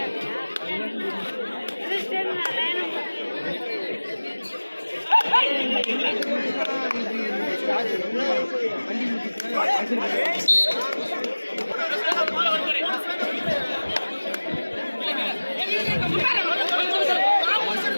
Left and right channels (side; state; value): both; inverted; correlation -1.00